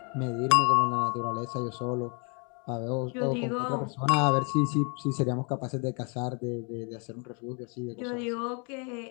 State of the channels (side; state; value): right; quieter; 35.4 dB